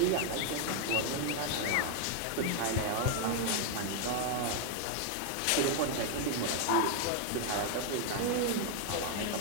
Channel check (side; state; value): both; different; correlation 0.00